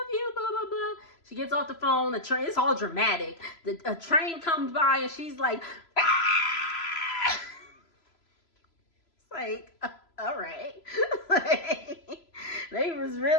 you, blah, blah, blah. She gets off the phone. It's all dramatic. A train comes by and she's like, ah! It's like, all right. They was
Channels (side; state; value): right; late; 3.0 ms